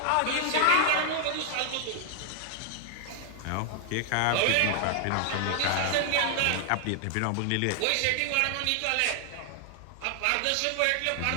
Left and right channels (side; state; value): both; different; correlation 0.00